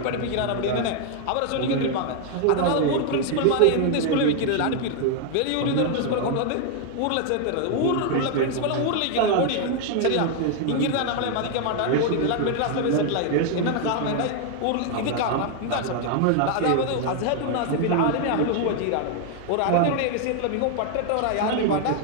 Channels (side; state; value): both; different; correlation 0.00